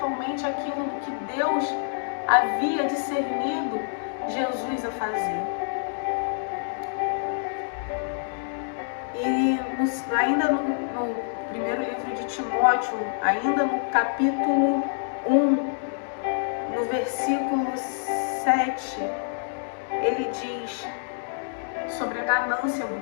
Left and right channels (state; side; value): silent; right; digital silence